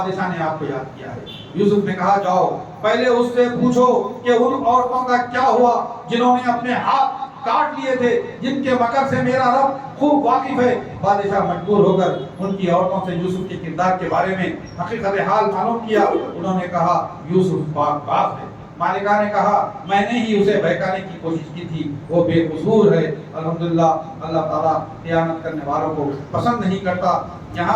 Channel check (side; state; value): both; identical; correlation 1.00